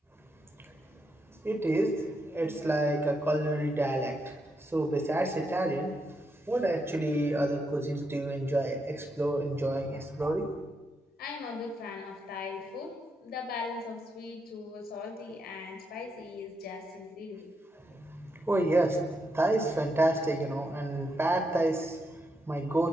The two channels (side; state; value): both; normal; correlation 0.81